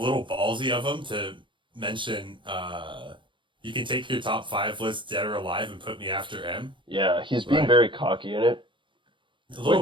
ballsy of him to mention you can take your top five list dead or alive and put me after M. yeah, he's being Right. very cocky in it. A little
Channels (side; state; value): left; late; 0.24 ms